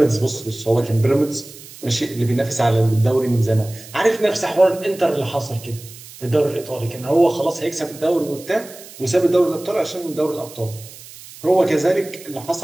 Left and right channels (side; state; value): right; noise; hiss, 18 dB below the sound